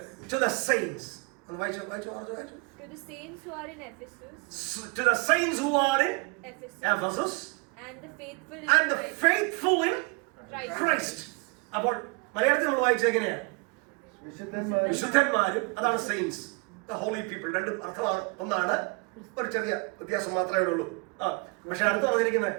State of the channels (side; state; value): left; quieter; 30.4 dB